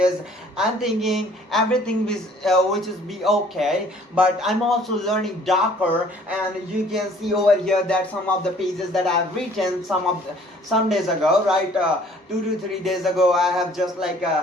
I'm thinking everything which is be okay, but I'm also learning Docker, and you can see over here that some of the pages that I've written some days ago, right? 2 to 3 days ago, I have just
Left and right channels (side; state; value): both; normal; correlation 0.56